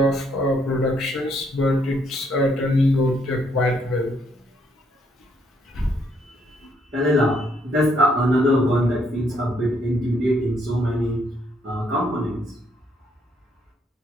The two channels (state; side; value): normal; both; correlation 0.71